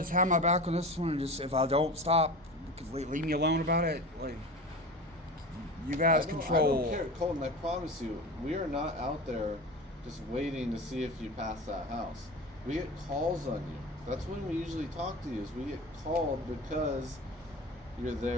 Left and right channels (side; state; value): both; normal; correlation 0.31